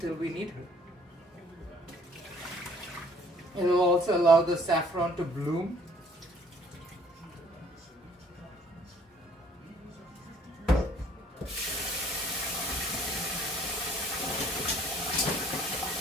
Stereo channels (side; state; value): both; normal; correlation 0.58